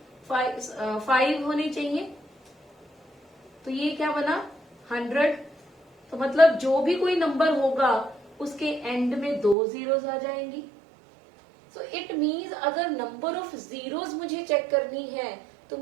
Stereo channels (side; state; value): left; drops out; at 9.6 s